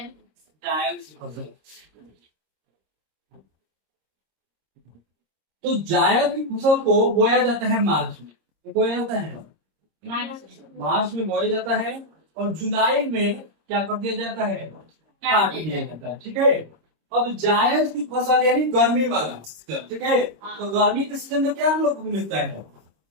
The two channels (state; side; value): late; left; 26 ms